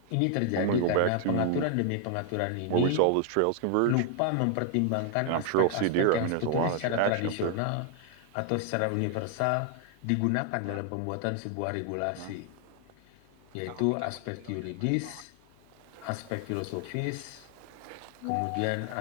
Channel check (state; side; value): different; both; correlation 0.00